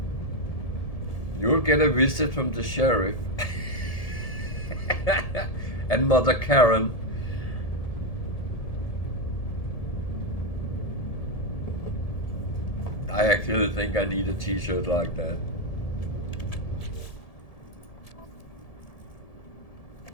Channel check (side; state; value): right; late; 1.7 ms